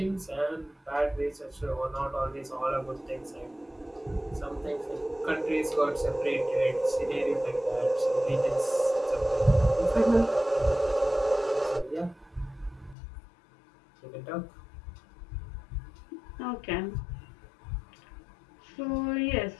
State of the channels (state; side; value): drops out; right; at 13.0 s